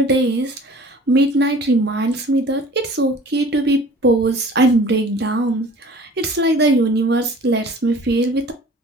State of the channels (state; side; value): normal; both; correlation 0.46